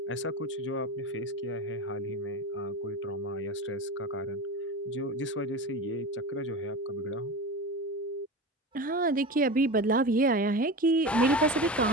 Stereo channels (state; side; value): normal; both; correlation 0.27